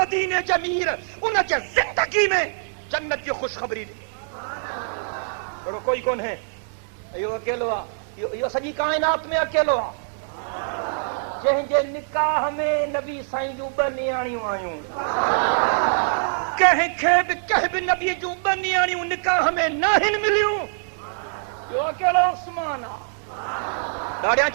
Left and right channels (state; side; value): silent; left; digital silence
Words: جمیر ان کے زندگی میں جنت کی خوشخبری دی. بڑو کوئی کون ہے یو اکیلو آ. یو سجی کائنات میں اکیلو آ. جن جے نکاح میں نبی سائیں جو بنیاڑیوں آیوں. کہیں بھی نبی جو بنیاڑیوں نکاح میں ناہن ملیوں. یو اکیلو عثمان آ. داڑیاں